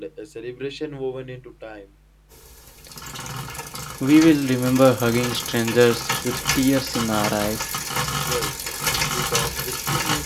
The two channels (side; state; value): both; identical; correlation 1.00